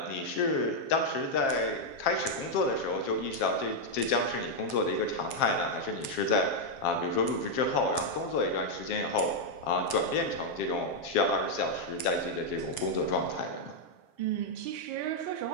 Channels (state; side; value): late; right; 7.5 ms